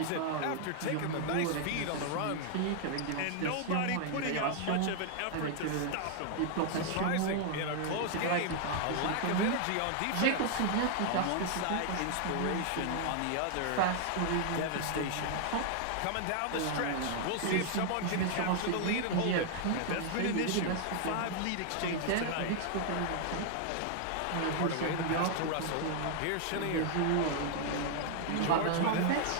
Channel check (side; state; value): both; different; correlation 0.00